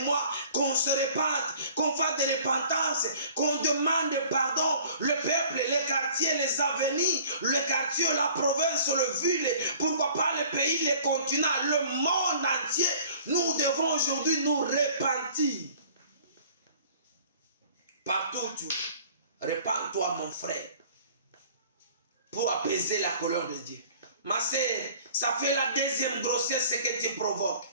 mois, qu'on se répande, qu'on fasse des repentances, qu'on demande pardon. Le peuple, les quartiers, les avenirs, le quartier, la province, le ville, pourquoi pas le pays, les continents, le monde entier. Nous devons aujourd'hui nous repentir. Partout où tu es, repens-toi, mon frère, pour apaiser la colère de Dieu. Ma sœur, ça fait la 2e grossesse que tu provoques.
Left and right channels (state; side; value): inverted; both; correlation -0.50